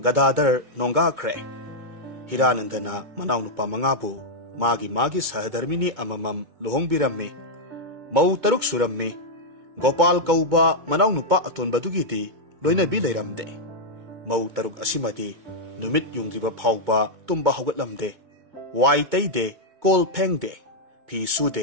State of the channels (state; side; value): late; left; 2.2 ms